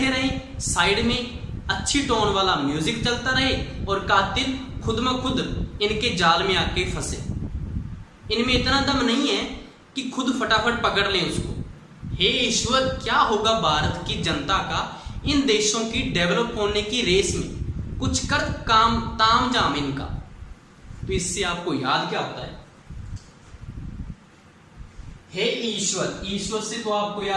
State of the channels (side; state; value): both; identical; correlation 1.00